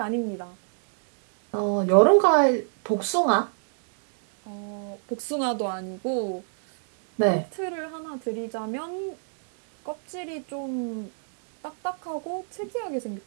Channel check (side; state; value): left; silent; digital silence